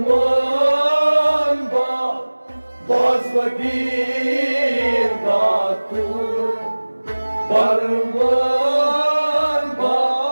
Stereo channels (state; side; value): inverted; both; correlation -1.00